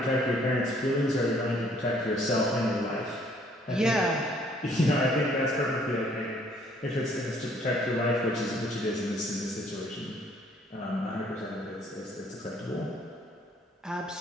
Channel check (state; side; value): normal; both; correlation 0.62